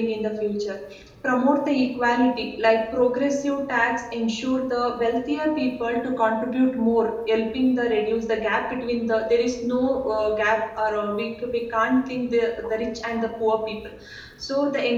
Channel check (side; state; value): both; identical; correlation 1.00